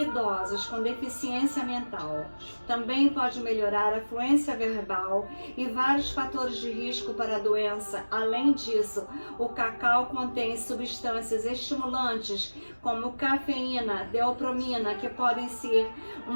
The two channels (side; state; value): both; inverted; correlation -1.00